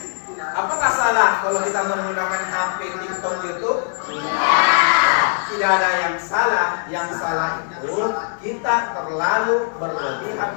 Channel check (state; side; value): silent; right; digital silence